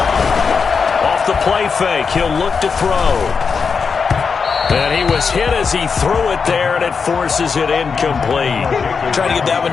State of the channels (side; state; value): right; quieter; 5.5 dB